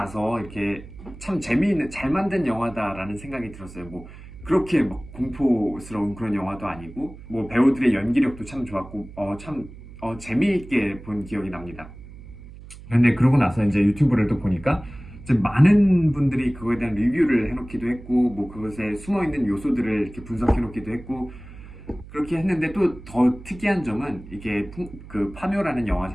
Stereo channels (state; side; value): noise; right; hum, 17 dB below the sound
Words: 이렇게 참 재미있는, 잘 만든 영화다라는 생각이 들었어요. 뭐, 그렇게 막 공포스러운 그런 영화도 아니고, 뭐, 배우들의 연기력도 참 좋았고, 재미있게 본 기억이 납니다. 근데 그러고 나서 이제 유튜브를 또 보니까, 이제 많은 분들이 그거에 대한 리뷰를 해놓기도 했고, 뭐, 그것에 숨어있는 요소들을 이렇게 분석해놓기도 했고, 그렇게 했는데 또 더 특이한 점은 이게 그 파묘라는 영화